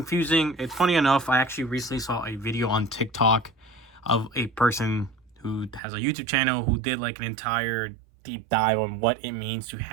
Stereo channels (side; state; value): left; drops out; at 5.8 s